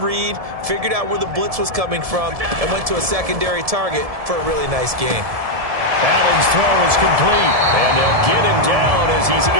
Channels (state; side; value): late; left; 1.7 ms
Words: figured out where the blitz was coming from, and went to a secondary target for a really nice game. Allen's throw is complete, and they'll get him down as he's